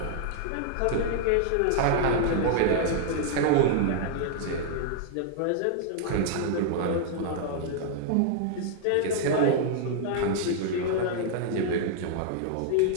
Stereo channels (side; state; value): both; different; correlation -0.01